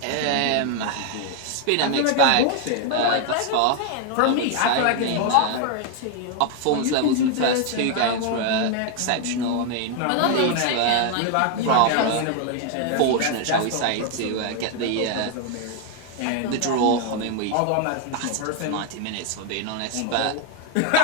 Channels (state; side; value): different; both; correlation 0.00